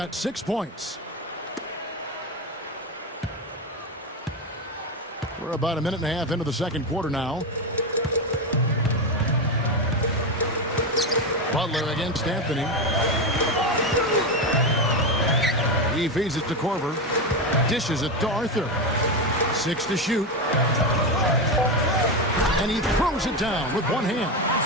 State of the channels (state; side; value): normal; both; correlation 0.13